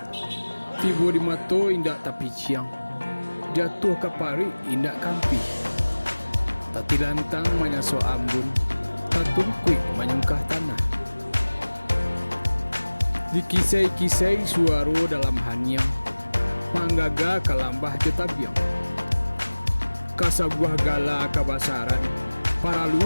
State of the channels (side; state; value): both; inverted; correlation -1.00